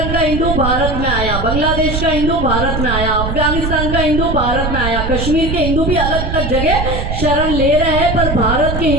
का हिंदू भारत में आया, बांग्लादेश का हिंदू भारत में आया, अफगानिस्तान का हिंदू भारत में आया, कश्मीर के हिंदू भी अलग अलग जगह शरण ले रहे हैं, पर भारत के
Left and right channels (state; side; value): noise; right; rumble, 3 dB below the sound